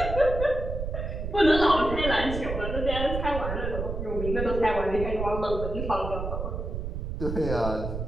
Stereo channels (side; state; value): right; noise; rumble, 4 dB below the sound